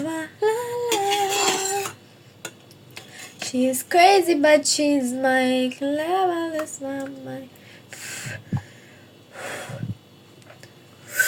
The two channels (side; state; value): both; identical; correlation 1.00